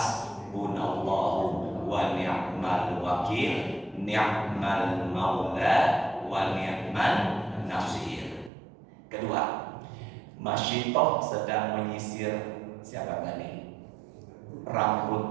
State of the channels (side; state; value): left; drops out; at 8.5 s